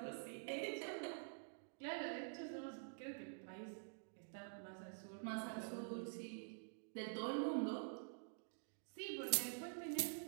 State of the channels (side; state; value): left; silent; digital silence